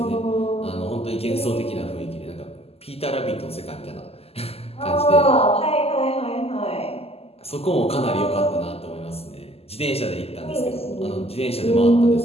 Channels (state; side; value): late; right; 0.29 ms